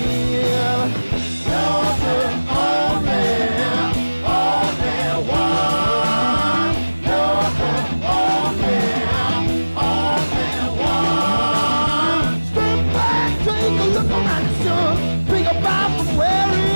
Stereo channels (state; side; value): inverted; both; correlation -1.00